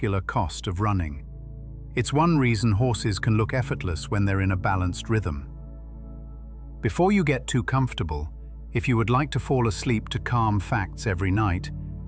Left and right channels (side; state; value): both; identical; correlation 1.00